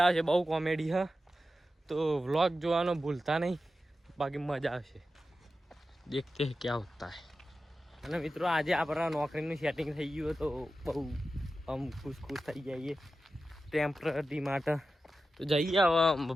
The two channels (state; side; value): normal; both; correlation 0.92